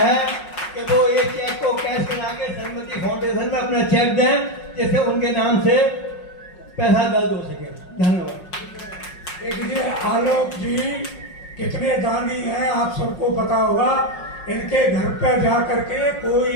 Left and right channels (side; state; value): right; late; 5.5 ms